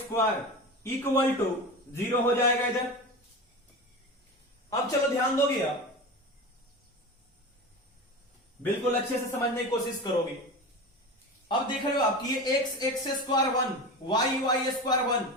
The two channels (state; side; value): normal; both; correlation 0.27